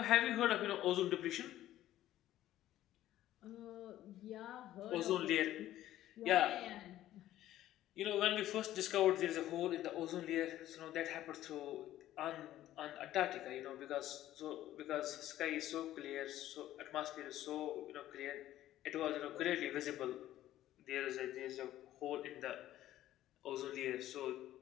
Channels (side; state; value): right; quieter; 13.6 dB